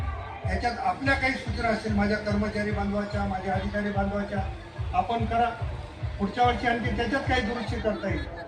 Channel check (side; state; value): both; identical; correlation 1.00